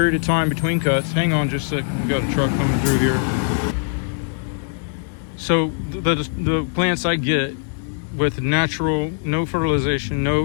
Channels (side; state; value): right; silent; digital silence